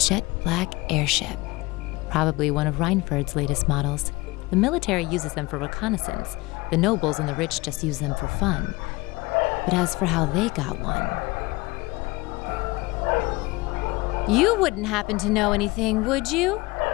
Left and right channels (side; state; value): right; quieter; 22.6 dB